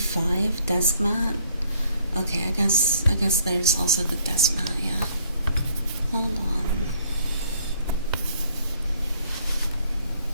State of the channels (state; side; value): inverted; both; correlation -0.63